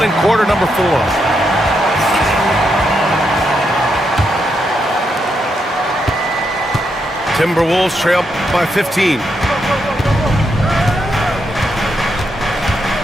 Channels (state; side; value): normal; both; correlation 0.81